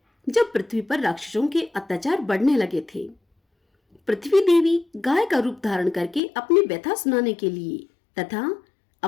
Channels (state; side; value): drops out; right; at 6.2 s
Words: जब पृथ्वी पर राक्षसों के अत्याचार बढ़ने लगे थे। पृथ्वी देवी गाय का रूप धारण करके अपनी व्यथा सुनाने के लिए तथा